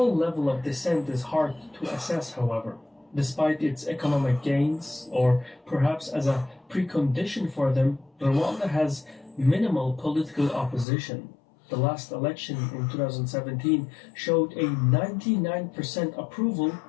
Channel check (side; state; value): right; drops out; at 10.9 s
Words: level of dissent is hard to assess, however. Despite its economic gains, or perhaps as a precondition for them, Rwanda has minimal political opposition. The last election in 2017 showed a 99% approval